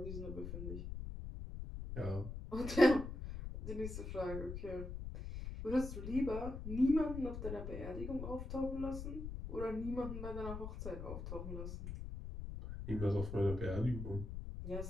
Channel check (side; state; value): left; noise; rumble, 6 dB below the sound